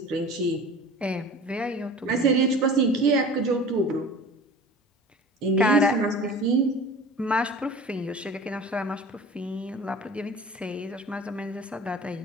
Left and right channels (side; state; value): both; normal; correlation 0.40